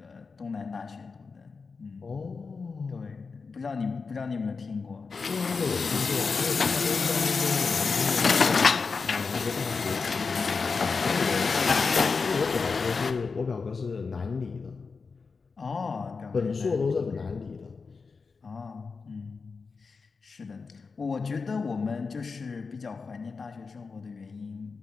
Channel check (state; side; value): quieter; right; 4.8 dB